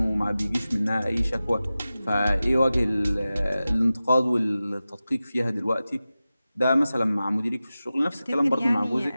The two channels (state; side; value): inverted; both; correlation -0.95